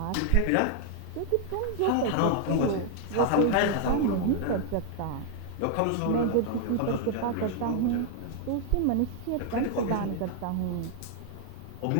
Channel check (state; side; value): different; both; correlation 0.00